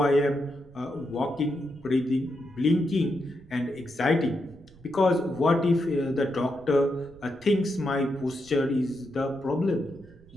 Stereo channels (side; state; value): right; noise; rumble, 24 dB below the sound